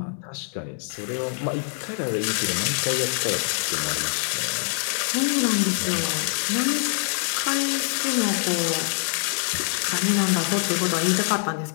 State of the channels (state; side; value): silent; right; 56 dB below the other